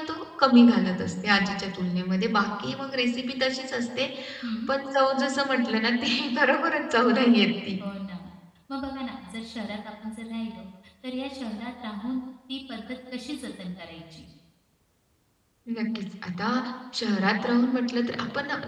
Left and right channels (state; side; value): identical; both; correlation 1.00